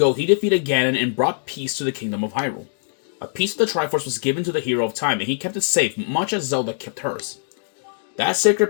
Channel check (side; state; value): right; silent; digital silence